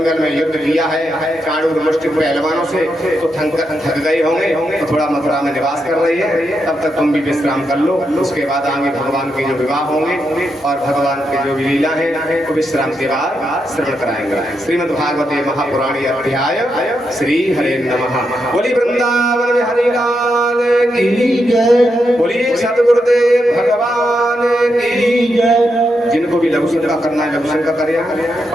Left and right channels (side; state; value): both; normal; correlation 0.83